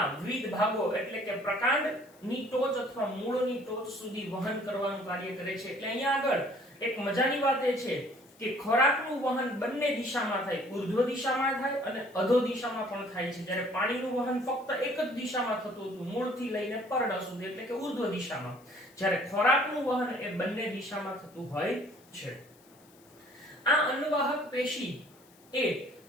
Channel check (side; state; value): left; noise; hiss, 28 dB below the sound